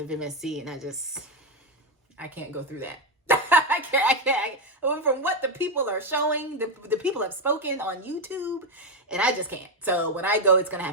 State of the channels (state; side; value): normal; both; correlation 0.08